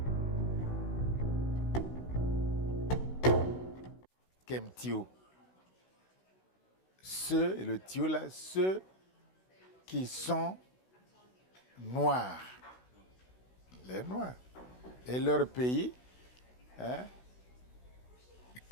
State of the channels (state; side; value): late; right; 16 ms